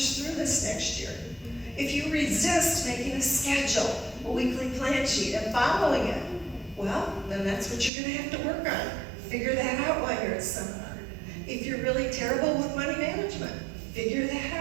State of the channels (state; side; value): drops out; left; at 7.9 s